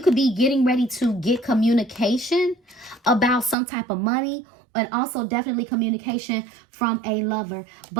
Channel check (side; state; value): left; drops out; at 3.6 s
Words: could be getting ready to get communication about some type of money, and also definitely communication from a lover.